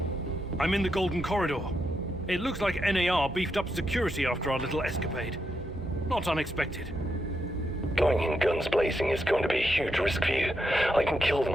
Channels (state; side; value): normal; both; correlation 0.82